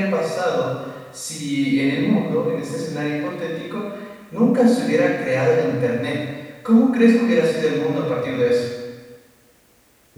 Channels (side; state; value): both; identical; correlation 1.00